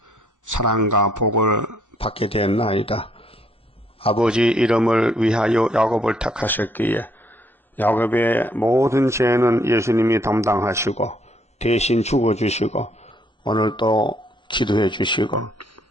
사랑과 복을 받게 되었나이다. 아버지 이름을 위하여 야곱을 택하셨기에 야곱의 모든 죄는 예수님이 담당하시고 대신 죽어주시고 오늘 또 기도해 주시고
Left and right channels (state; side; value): normal; both; correlation 0.68